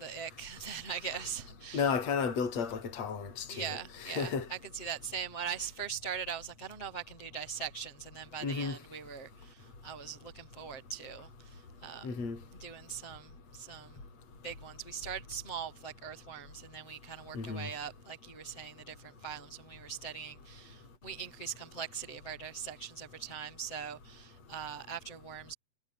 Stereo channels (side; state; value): right; late; 7.9 ms